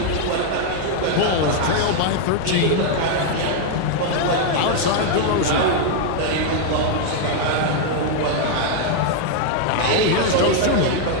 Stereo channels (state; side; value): different; both; correlation 0.00